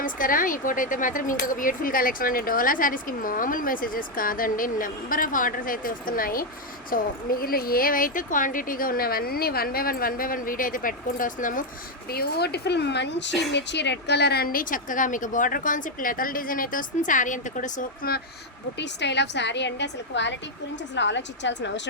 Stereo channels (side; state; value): both; normal; correlation 0.03